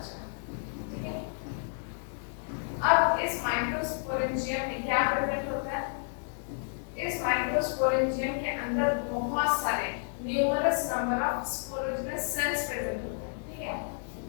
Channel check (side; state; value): right; silent; 57 dB below the other